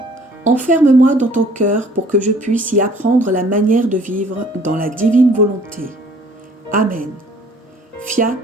enferme-moi dans ton cœur pour que je puisse y apprendre la manière de vivre dans la divine volonté. Amen. Fiat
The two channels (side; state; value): both; normal; correlation 0.55